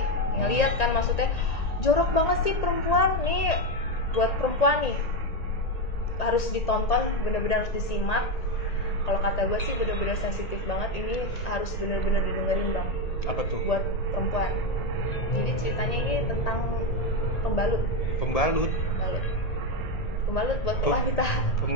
ngelihat kan maksudnya jorok banget sih perempuan nih, buat perempuan nih harus ditonton, bener-bener harus disimak. Kalau kata gue sih bener-bener sensitif banget, ini harus bener-bener didengerin bang. Apa tuh? Buat perempuan. Jadi ceritanya ini tentang pembalut buat wanita.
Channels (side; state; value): right; late; 1.8 ms